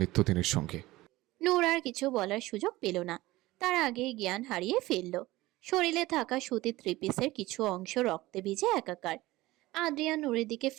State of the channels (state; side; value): quieter; left; 18.6 dB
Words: সঙ্গী। নূর আর কিছু বলার সুযোগ পেল না, তার আগেই জ্ঞান হারিয়ে ফেলল। শরীরে থাকা সুতির থ্রি পিসের কিছু অংশ রক্তে ভিজে একাকার। আদ্রিয়ান নূরের দিকে